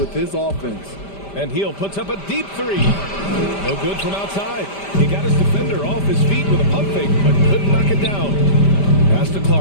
his offense. And Heel puts up a deep 3. No good from outside. He got his defender off his feet with a pump fake, but couldn't knock it down. Pass to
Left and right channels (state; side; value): late; right; 5.1 ms